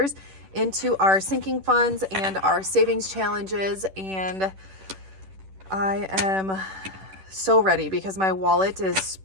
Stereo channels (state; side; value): late; left; 10 ms